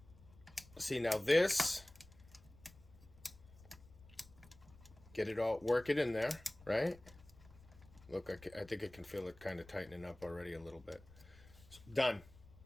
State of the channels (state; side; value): noise; left; rumble, 22 dB below the sound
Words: see, now this, get it all, work it in there, right? Look, I think I can feel it kind of tightening up already a little bit. Done.